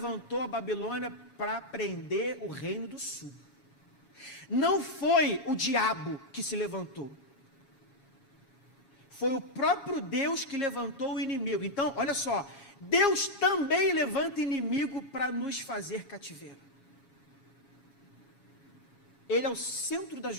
a Babilônia para prender o reino do sul. Não foi o diabo que se levantou. Foi o próprio Deus que levantou o inimigo. Então, olha só, Deus também levanta inimigo para nos fazer cativeiro. Ele é o centro da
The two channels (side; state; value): right; late; 6.8 ms